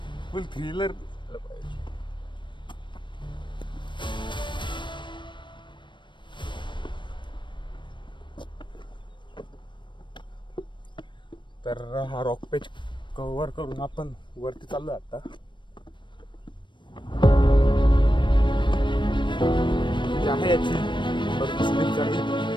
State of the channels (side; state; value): right; late; 0.23 ms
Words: फुल थ्रिलर. तर हा रॉक पेज कव्हर करून आपण वरती चाललोय आता. जी आहे याची भरपूर स्लिप चढी